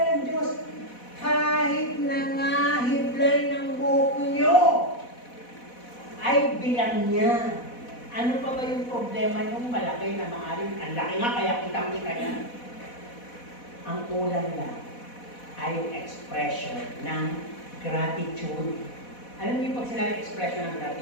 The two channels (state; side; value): late; right; 4.1 ms